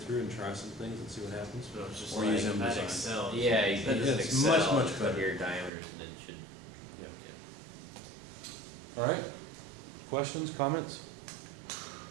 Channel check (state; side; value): drops out; left; at 5.7 s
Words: through and try some things and see what happens. So it's just Or like use that Indesign. Excel. yeah, you can just It's much, Excel, much put better. your diameters and then it should, Yeah. All right, questions, comments?